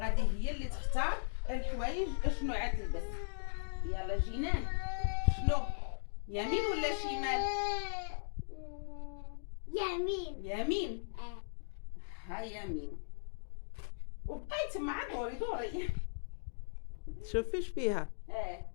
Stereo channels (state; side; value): silent; right; digital silence